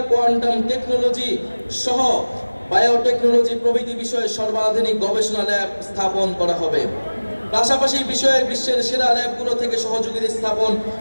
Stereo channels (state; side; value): inverted; both; correlation -1.00